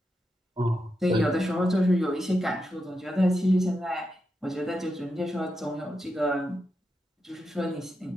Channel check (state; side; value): normal; both; correlation 0.86